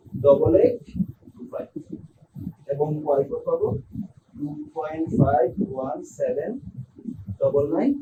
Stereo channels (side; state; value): both; identical; correlation 1.00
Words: এবং y4 পাবো